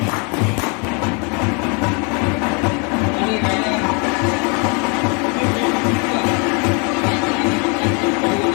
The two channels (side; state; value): right; quieter; 33.8 dB